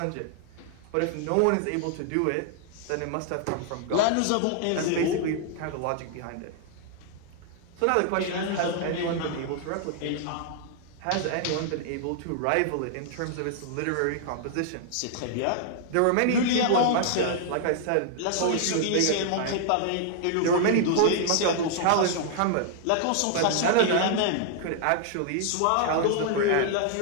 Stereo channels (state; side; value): different; both; correlation -0.01